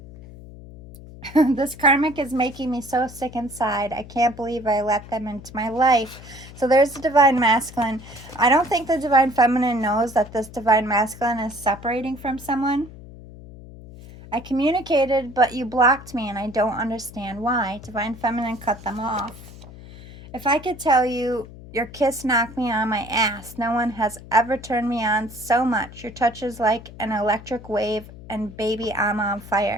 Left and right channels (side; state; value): left; noise; hum, 17 dB below the sound